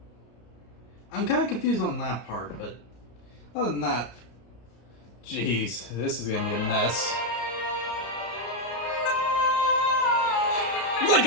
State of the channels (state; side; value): late; right; 33 ms